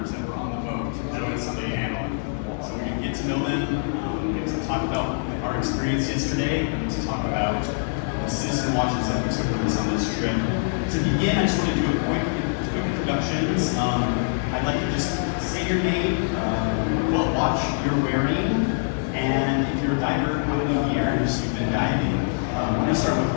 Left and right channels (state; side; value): silent; right; digital silence